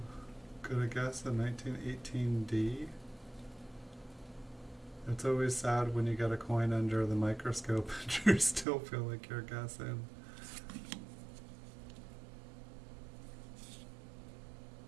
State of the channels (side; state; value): left; drops out; at 8.7 s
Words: gonna guess a 1918D. It's always sad when you get a coin under the microscope and you still feel like you're guessing.